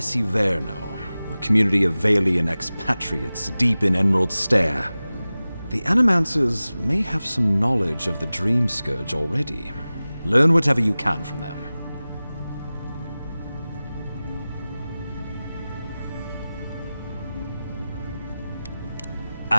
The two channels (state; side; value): inverted; both; correlation -0.97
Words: a community of Valian expatriates deep in Emerald Stair. The Animancers may have some knowledge of the Dream Scourge already. Learn whatever you can from them.